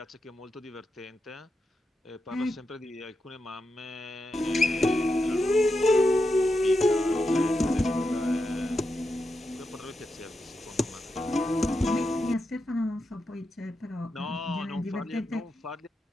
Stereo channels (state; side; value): normal; both; correlation 0.87